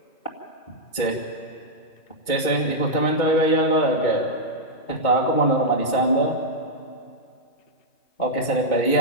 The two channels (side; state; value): right; late; 2.2 ms